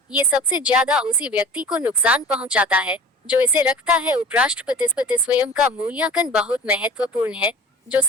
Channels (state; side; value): normal; both; correlation 0.39